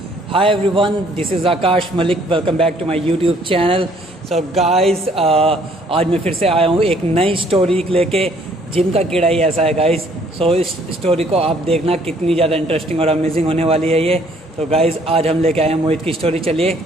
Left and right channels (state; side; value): normal; both; correlation 0.62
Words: Hi everyone, this is Akash Malik. Welcome back to my YouTube channel. So guys, आज मैं फिर से आया हूँ एक नई स्टोरी लेके। जिम का कीड़ा ही ऐसा है गाइस। सो इस स्टोरी को आप देखना कितनी ज़्यादा इंटरेस्टिंग और अमेजिंग होने वाली है ये। तो गाइस आज हम लेके आए हैं मोहित की स्टोरी। चलिए